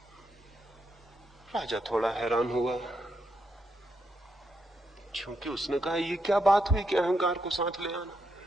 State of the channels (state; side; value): normal; both; correlation 0.81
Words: राजा थोड़ा हैरान हुआ, क्योंकि उसने कहा ये क्या बात हुई कि अहंकार को साथ ले